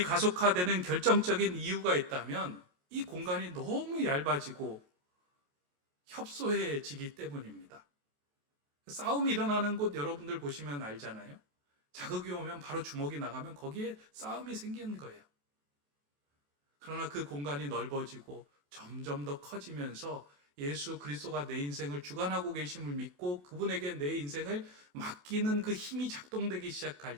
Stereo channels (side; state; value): left; late; 28 ms